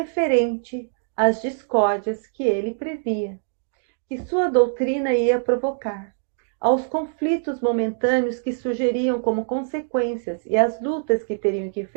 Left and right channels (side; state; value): left; silent; digital silence